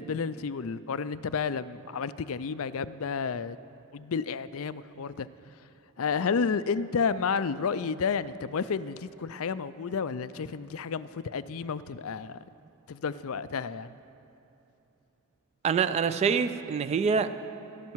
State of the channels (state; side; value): normal; both; correlation -0.04